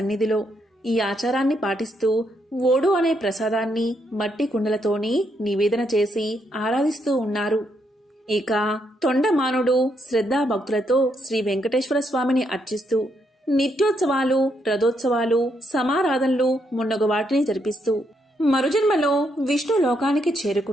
ఈ ఆచారాన్ని పాటిస్తూ ఓడు అనే ప్రసాదాన్ని మట్టి కుండలతోని నివేదన చేసి ఆరాధిస్తూ ఉన్నారు. ఇక తొండమానుడు శ్రద్ధాభక్తులతో శ్రీ వెంకటేశ్వర స్వామిని అర్చిస్తూ నిత్యోత్సవాలు, రథోత్సవాలు, సమారాధనలు మున్నగు వాటిని జరిపిస్తూ మరుజన్మలో విష్ణు లోకానికి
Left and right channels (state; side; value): normal; both; correlation 0.77